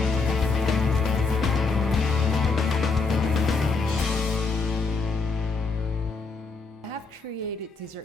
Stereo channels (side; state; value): right; quieter; 4.3 dB